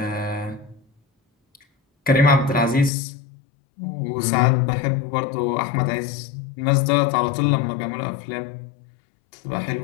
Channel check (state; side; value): drops out; right; at 2.9 s